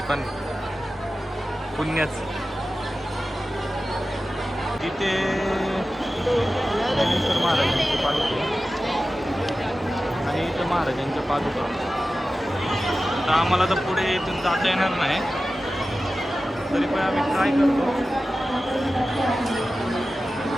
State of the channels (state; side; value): normal; both; correlation 0.94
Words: पण पुण्यच. तिथे ज्ञानेश्वर महाराजांची पालखी आणि इथं महाराजांच्या पादुका. आता आम्हाला तर पुढे इथून जाता येणार नाही, तरी पण आम्ही ट्राय करतो.